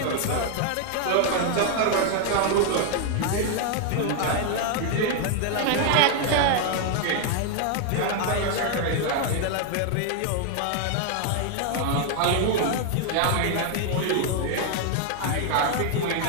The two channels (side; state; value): both; different; correlation 0.00